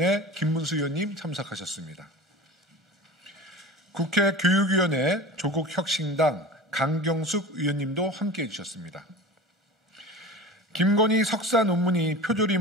김문수 의원님 참석하셨습니다. 국회 교육위원회 조국혁신당 강경숙 의원님도 함께해 주셨습니다. 김건희 석사 논문이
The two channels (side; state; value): both; normal; correlation 0.35